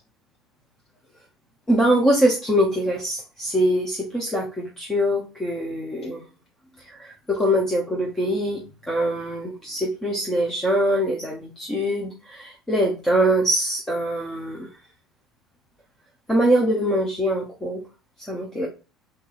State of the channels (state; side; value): normal; both; correlation 0.64